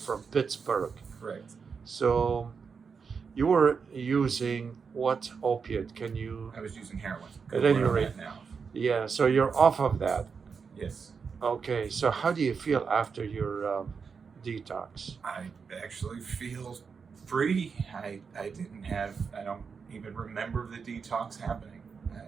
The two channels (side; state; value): left; quieter; 5.7 dB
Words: from Pittsburgh. Correct. So, you were using what opiate? Can you, I was using heroin. at Good any word on rate, that now. yeah, so you're off of that. Yes. Okay. So, how do you feel after your detox? I actually feel free. I don't even remember the detox happening.